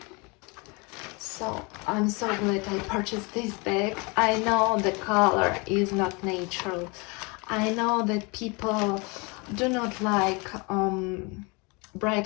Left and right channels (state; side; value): quieter; right; 29.0 dB